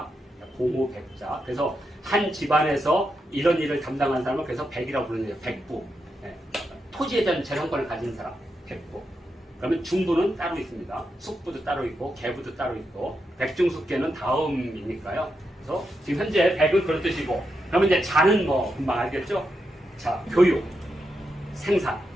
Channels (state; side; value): normal; both; correlation 0.85